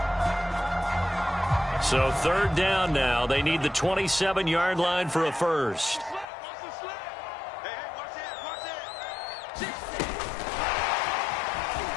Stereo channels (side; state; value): right; drops out; at 6.2 s